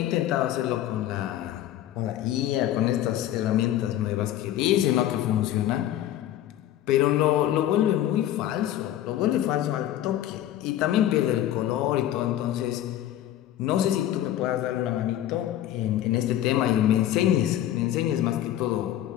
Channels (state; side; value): quieter; right; 12.5 dB